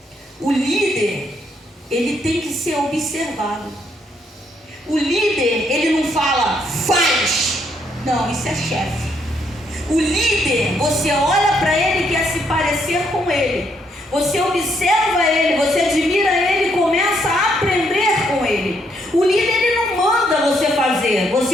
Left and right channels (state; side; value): normal; both; correlation 0.73